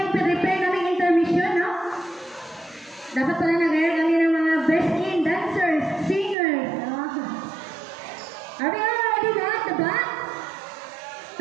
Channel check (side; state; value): left; drops out; at 6.4 s